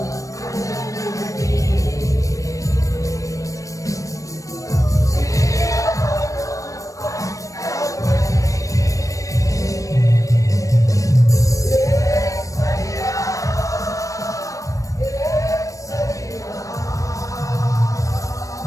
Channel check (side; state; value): right; late; 0.16 ms